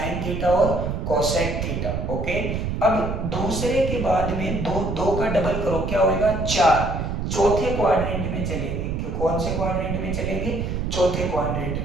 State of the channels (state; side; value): noise; right; rumble, 2 dB below the sound